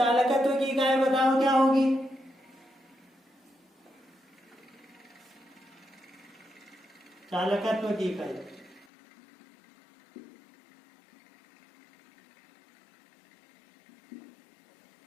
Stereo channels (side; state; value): right; drops out; at 8.8 s